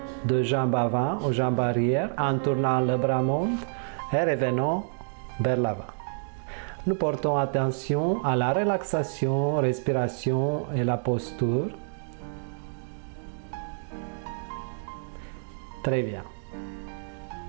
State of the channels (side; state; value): left; silent; digital silence